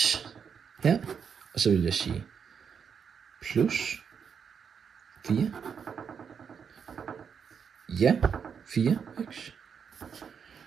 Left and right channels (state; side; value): quieter; left; 6.9 dB